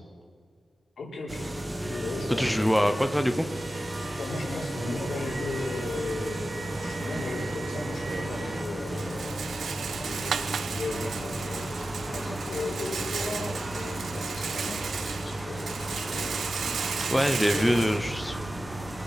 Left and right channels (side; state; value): both; normal; correlation 0.93